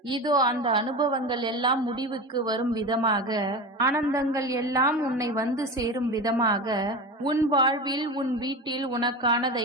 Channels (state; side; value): normal; both; correlation 0.26